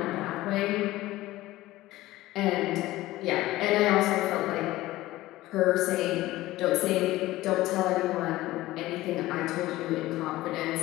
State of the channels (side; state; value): right; quieter; 17.1 dB